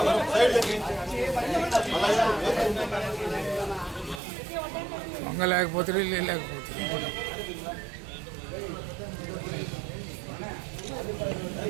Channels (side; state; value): left; drops out; at 4.2 s